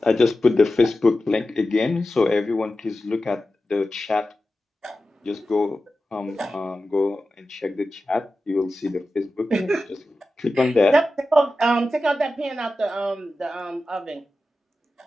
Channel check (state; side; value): normal; both; correlation 0.93